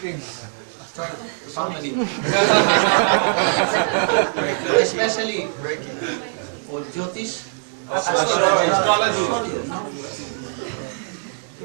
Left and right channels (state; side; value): silent; left; digital silence